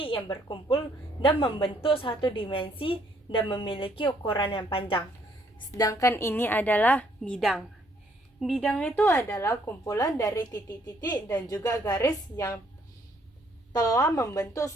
yang berkumpul dan membentuk satu dimensi dan memiliki ukuran yang panjang. Sedangkan ini adalah bidang. Bidang itu adalah kumpulan dari titik-titik dan juga garis yang telah membentuk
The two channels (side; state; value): both; normal; correlation 0.67